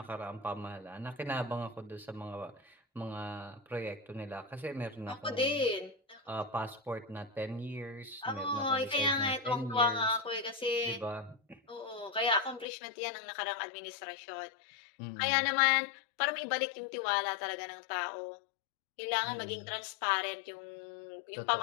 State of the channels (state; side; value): drops out; right; at 12.7 s